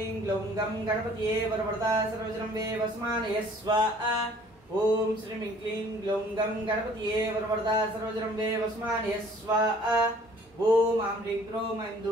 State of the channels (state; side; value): normal; both; correlation 0.55